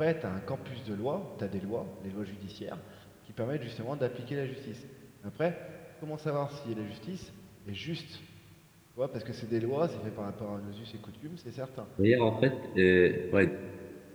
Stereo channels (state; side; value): identical; both; correlation 1.00